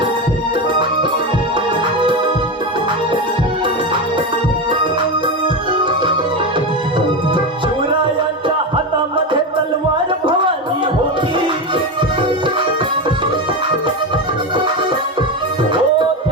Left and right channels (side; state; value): both; normal; correlation 0.16